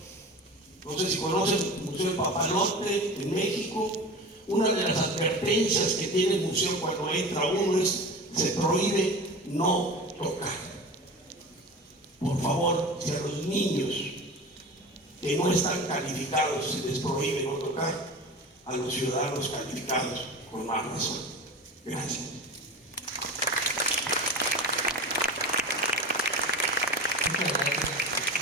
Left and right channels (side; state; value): both; normal; correlation 0.33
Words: No sé si conocen el Museo del Papalote en México. Una de las advertencias que tiene el museo cuando entra uno es: se prohíbe no tocar. Por favor, si a los niños que no están calificados se les prohíbe no tocar, a los ciudadanos calificados con más razón. Gracias. Muchas gracias